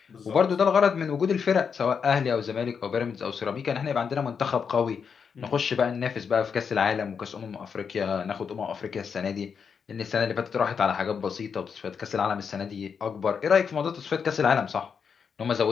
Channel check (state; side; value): quieter; right; 6.4 dB